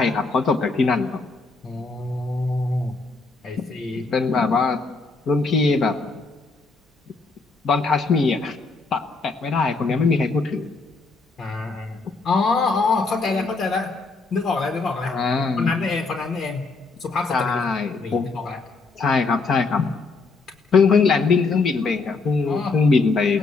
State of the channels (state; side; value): quieter; right; 4.0 dB